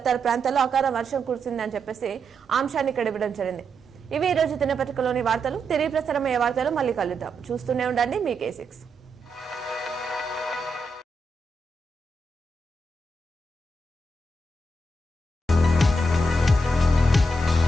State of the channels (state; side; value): normal; both; correlation 0.83